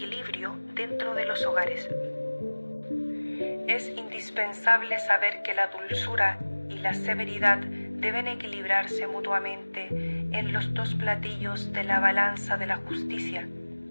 dentro de los hogares. Es indispensable saber que la dulzura y la severidad deben equilibrarse mutuamente en los dos platillos de la balanza de la justicia.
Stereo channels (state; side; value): inverted; both; correlation -1.00